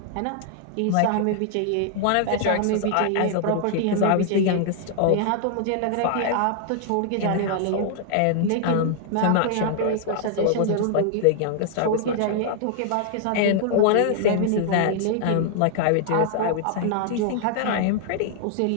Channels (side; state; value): both; different; correlation 0.00